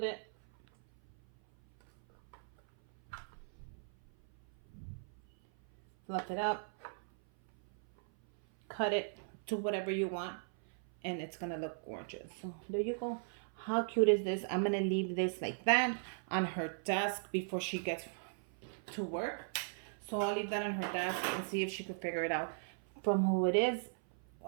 it. Fluff it up. Cut it to whatever you want. And it's gonna look gorgeous. So there you go. How cute is this? I'm gonna leave this like that on her desk before she gets to work. So I'll leave that on her desk and see if she could figure it out from who it is.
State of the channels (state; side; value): silent; left; 53 dB below the other